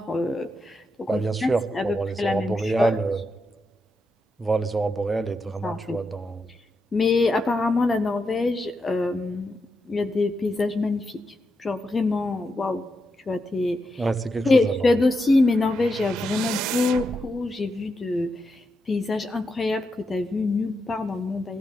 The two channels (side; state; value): both; normal; correlation 0.85